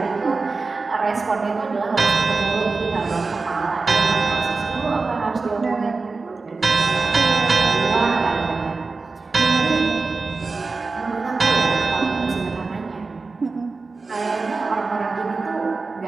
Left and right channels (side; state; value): left; quieter; 4.0 dB